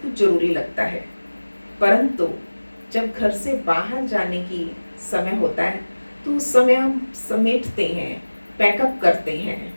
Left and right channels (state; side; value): inverted; both; correlation -1.00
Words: कुछ जरूरी लगता है, परंतु जब घर से बाहर जाने की समय होता है तो उस समय हम समेटते हैं, पैकअप करते हैं।